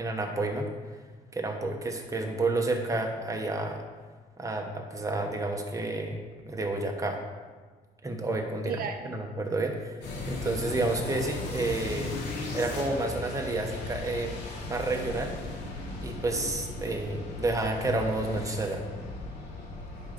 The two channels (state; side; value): normal; both; correlation 0.60